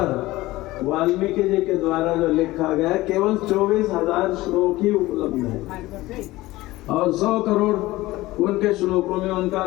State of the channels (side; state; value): right; quieter; 18.3 dB